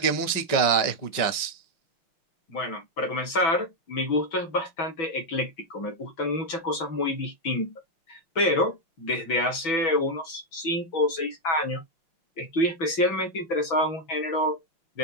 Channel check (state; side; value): late; right; 6.1 ms